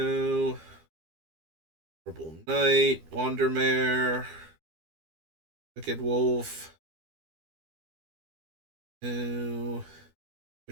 Purple Knight, Wandermare, Wicked Wolf, no.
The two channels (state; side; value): late; left; 12 ms